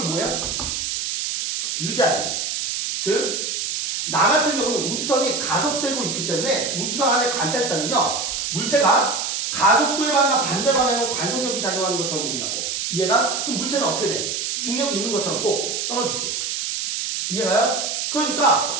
뭐야? 유지하지. 즉, 나 같은 경우는 우주선이 가속되고 있기 때문에 우주선 안에 관찰자는요, 물체가 가속도에 반한 반대 방향으로 관성력이 작용하는 것처럼 보인다고. 이해가? 그럼 물체는 어떻게 돼? 중력이 있는 것처럼 꼭 떨어지지. 이해가요?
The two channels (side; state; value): right; noise; hiss, 2 dB below the sound